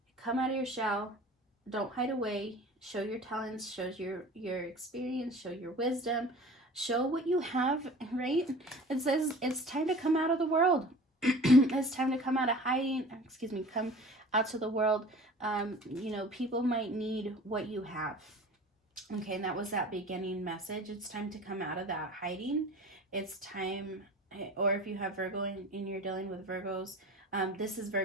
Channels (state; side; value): normal; both; correlation 0.41